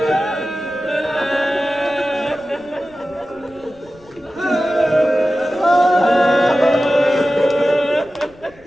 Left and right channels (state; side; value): noise; left; rumble, 27 dB below the sound